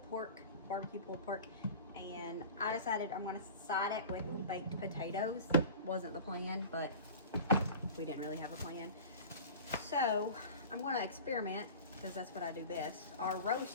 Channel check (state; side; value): inverted; both; correlation -0.37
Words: pork, barbecue pulled pork, and I decided I'm going to side it with baked potatoes. Wasn't the plan, but we didn't really have a plan. So I'm going to experiment because that's what I do best. Our